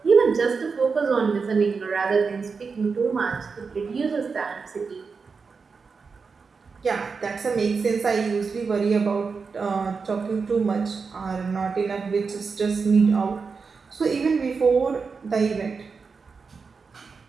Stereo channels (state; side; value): quieter; left; 5.0 dB